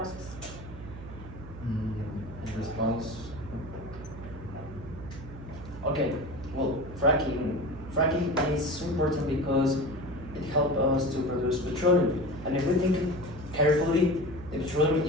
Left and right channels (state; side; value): noise; right; hum, 13 dB below the sound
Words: In response, okay, well, fracking is so important because it helps us to produce petroleum. And if we think carefully, the petroleum